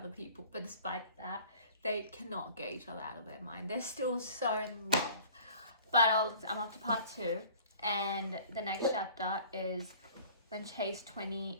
people, but despite that, they cannot get each other out of their mind. They're still so in love. But I'm up to part 2, and the next chapter is when Chase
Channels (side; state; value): both; inverted; correlation -0.48